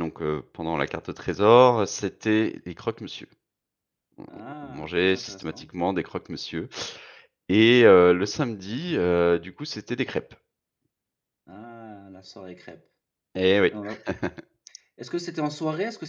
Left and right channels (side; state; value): both; identical; correlation 1.00